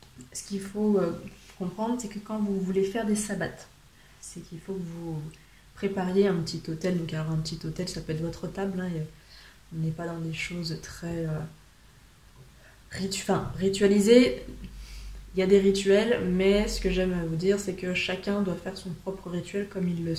ce qu'il faut comprendre, c'est que quand vous voulez faire des sabbats, c'est qu'il faut que vous prépariez un petit autel. Donc alors un petit autel, ça peut être votre table, hein, on n'est pas dans des choses très ritualisées. Il y a des rituels, mais ce que j'aime vous dire, c'est que chacun doit faire son propre rituel comme il le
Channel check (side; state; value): both; identical; correlation 1.00